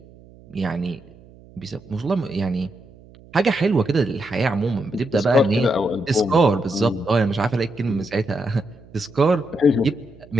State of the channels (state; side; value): noise; right; hum, 23 dB below the sound